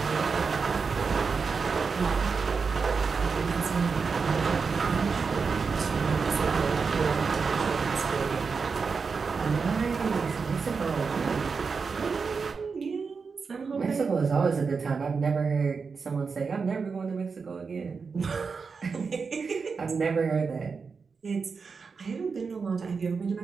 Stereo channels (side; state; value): left; quieter; 5.1 dB